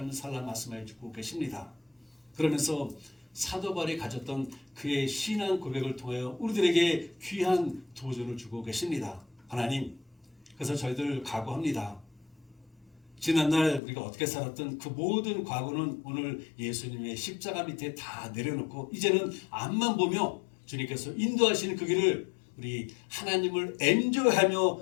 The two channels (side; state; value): right; drops out; at 13.8 s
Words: 살라 말씀해 주고 계십니다. 그러면서 사도 바울이 가졌던 그의 신앙 고백을 통하여 우리들에게 귀한 도전을 주고 계십니다. 하나님, 그래서 저희들 각오합니다. 지난날 우리가 어떻게 살았던 그 모든 과거는 오늘 예수님의 십자가 밑에 다 내려놓고 이제는 앞만 보며 주님께서 인도하시는 그 길을 우리 하나님을 엔조이하며